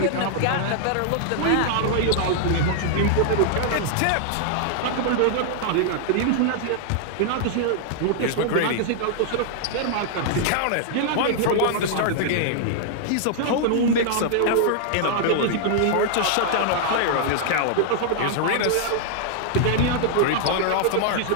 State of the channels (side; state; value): both; different; correlation -0.01